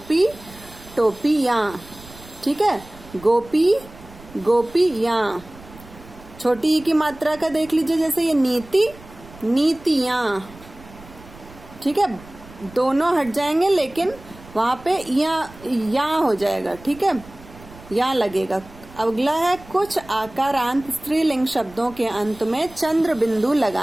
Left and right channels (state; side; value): noise; right; rumble, 20 dB below the sound